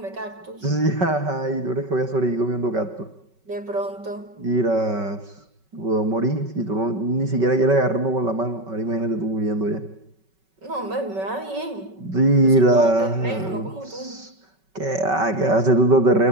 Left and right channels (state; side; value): late; left; 5.3 ms